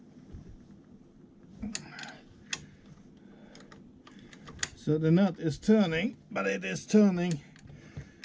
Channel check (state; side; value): identical; both; correlation 1.00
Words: So the nut is turning, but it is turning